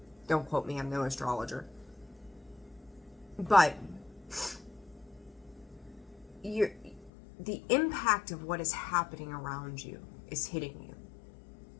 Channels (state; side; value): drops out; right; at 7.1 s